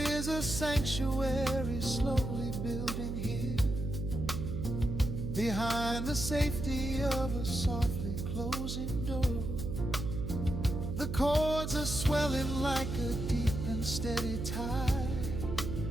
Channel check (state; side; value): noise; right; hum, 4 dB below the sound